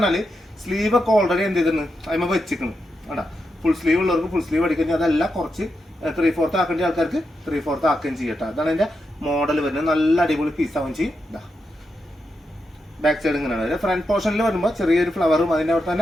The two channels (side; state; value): both; normal; correlation 0.86